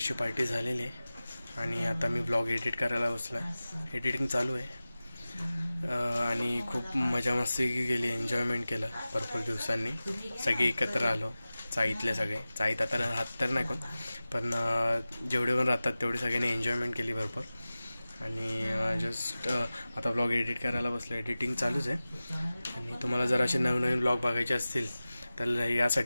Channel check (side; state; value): both; inverted; correlation -0.97